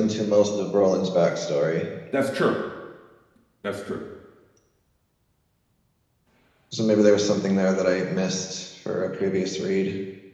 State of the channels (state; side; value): identical; both; correlation 1.00